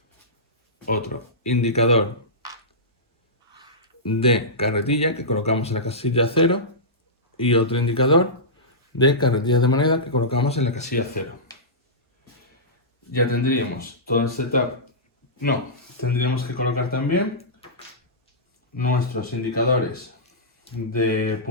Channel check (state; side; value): normal; both; correlation -0.16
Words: otro indicador de carretilla que colocamos en la casilla 0 y otro indicador de carretillas de moneda que colocamos en la casilla 0. Ya tendríamos todo el setup. No, tendríamos que colocar también nuestros indicadores de